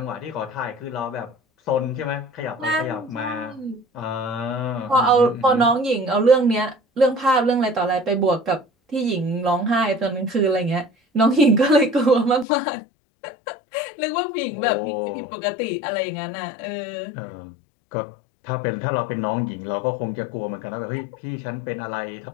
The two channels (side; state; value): right; drops out; at 12.5 s